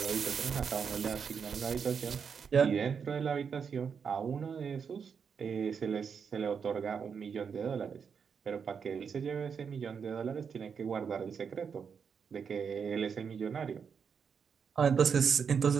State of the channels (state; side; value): quieter; left; 6.5 dB